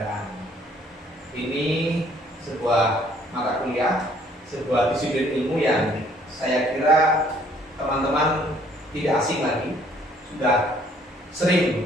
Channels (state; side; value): normal; both; correlation 0.61